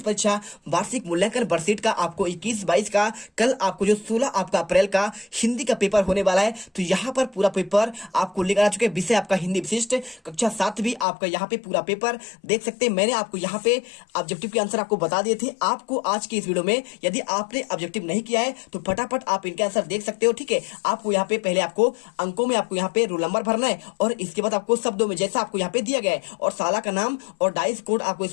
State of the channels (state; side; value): drops out; right; at 11.1 s